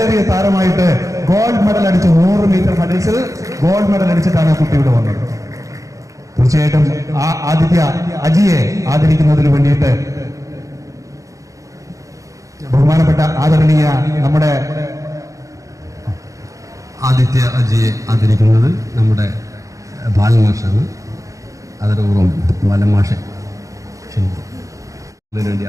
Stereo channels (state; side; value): late; left; 0.16 ms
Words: താരമായിട്ട് ഗോൾഡ് മെഡൽ അടിച്ചു. 100 മീറ്റർ ഹഡിൽസിൽ ഗോൾഡ് മെഡൽ അടിച്ചിട്ടാണ് കുട്ടി ഇവിടെ വന്നത്. തീർച്ചയായിട്ടും ആ അജിയെ ആദരിക്കുന്നതിന് വേണ്ടിയിട്ട് ബഹുമാനപ്പെട്ട ആദരണീയ നമ്മുടെ ആദിത്യ അജിയെ ആദരിക്കുന്നത് നമ്മുടെ ബാലമാഷാണ്. അതോടൊപ്പം ബാലമാഷെ ക്ഷണിക്കും. അതിനുവേണ്ടി